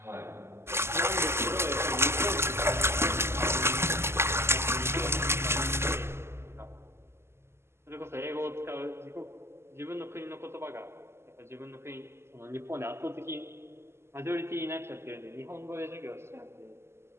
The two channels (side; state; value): left; late; 0.12 ms